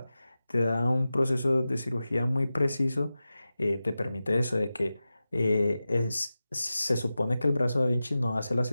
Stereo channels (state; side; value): inverted; both; correlation -0.94